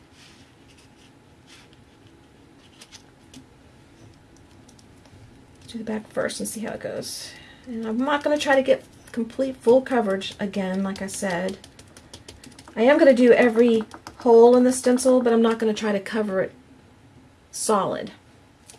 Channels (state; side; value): identical; both; correlation 1.00